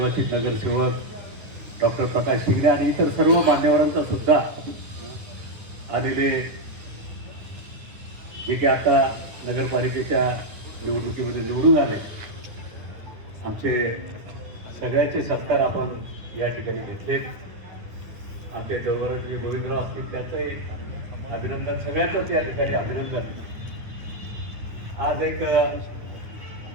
नगरसेवक डॉक्टर प्रकाश शिंगणे आणि इतर सर्व मान्यवरांचा सुद्धा आलेले, जे की आता नगरपालिकेच्या निवडणुकीमध्ये निवडून आले, आमचे सगळ्यांचे सत्कार आपण या ठिकाणी घेतले. आमचे जवळचे गोविंदराव असतील त्याचंही अभिनंदन, सगळ्यांचंच या ठिकाणी अभिनंदन. आज एक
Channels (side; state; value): left; late; 9.6 ms